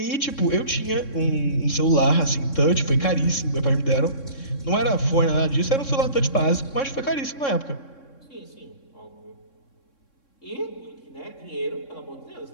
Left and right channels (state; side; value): late; right; 3.6 ms